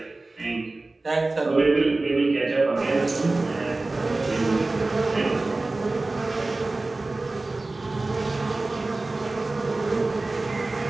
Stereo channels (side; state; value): left; quieter; 3.2 dB